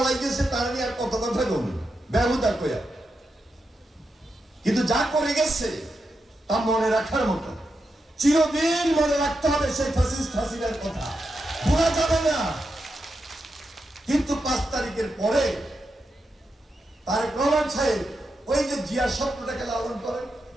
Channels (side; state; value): both; normal; correlation 0.86